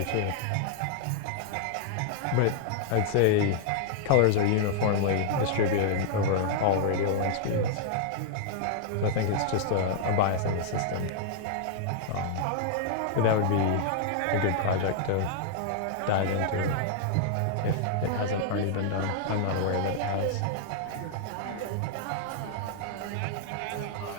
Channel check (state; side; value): different; both; correlation -0.01